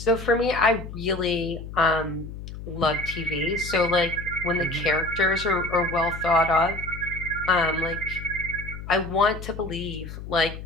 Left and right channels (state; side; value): noise; left; hum, 10 dB below the sound